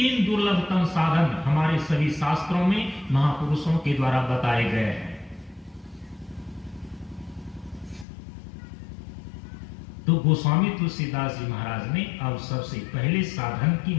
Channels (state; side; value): drops out; right; at 8.1 s